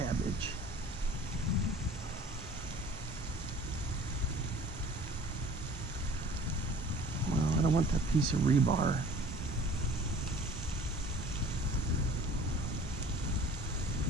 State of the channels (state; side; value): normal; both; correlation 0.48